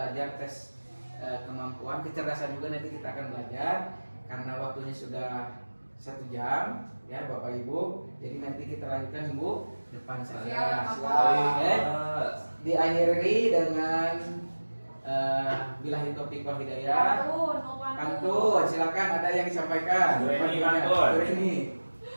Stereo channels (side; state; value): both; inverted; correlation -1.00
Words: tes kemampuan kecerdasan juga nanti kita akan belajar karena waktunya sudah 1 jam ya Bapak Ibu. Jadi nanti kita lanjutkan minggu depan saja. Oke. Diakhiri dengan billahi taufiq wal hidayah. Pantun, silakan ada yang disampaikan. Dureni, Pantunnya. pantun. Dureni.